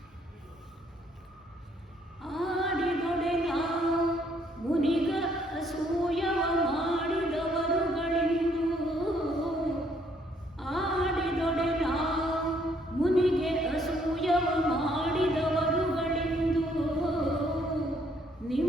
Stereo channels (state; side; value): normal; both; correlation 0.67